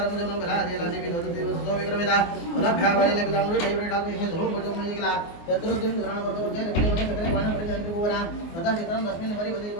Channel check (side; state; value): right; late; 24 ms